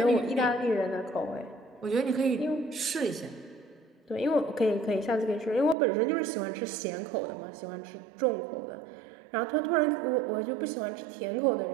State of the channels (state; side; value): drops out; left; at 5.8 s